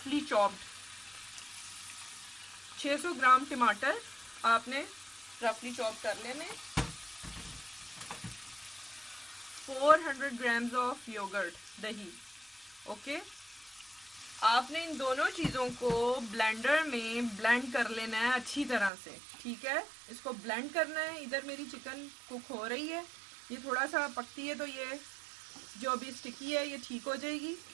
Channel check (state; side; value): drops out; left; at 18.9 s